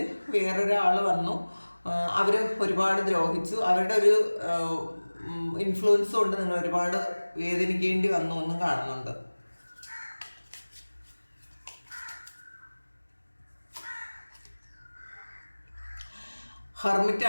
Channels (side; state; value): both; inverted; correlation -1.00